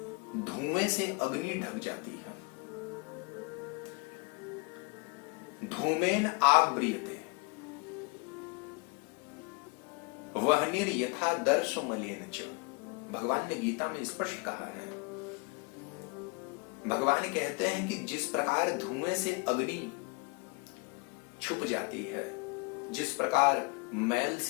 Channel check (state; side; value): quieter; right; 30.2 dB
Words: धुएं से अग्नि ढक जाती है, धूमेन आव्रियते वह्निर यथा दर्श मलेन च। भगवान ने गीता में स्पष्ट कहा है। भगवान कहते हैं कि जिस प्रकार धुएं से अग्नि छुप जाती है, जिस प्रकार मैल